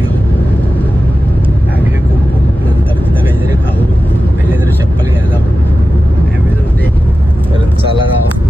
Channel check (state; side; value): normal; both; correlation 0.93